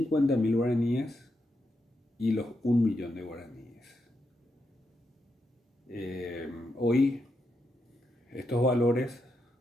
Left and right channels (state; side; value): normal; both; correlation 0.83